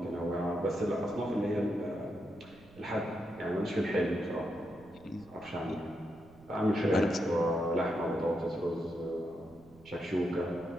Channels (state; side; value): noise; right; rumble, 24 dB below the sound